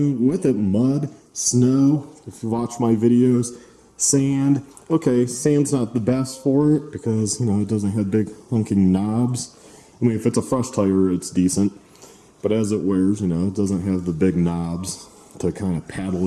with it. Mud, snow, if you watch my videos, sand. Okay, sand's not the best for it because, you know, it doesn't have big hunking knobs. I mean, if it's a fresh tire, it's decent. But as it wears, you know, it doesn't have the big knobs to kind of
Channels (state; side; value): identical; both; correlation 1.00